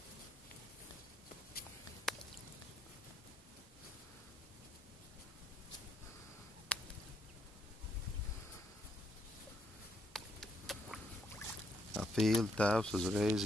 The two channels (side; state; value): both; normal; correlation 0.73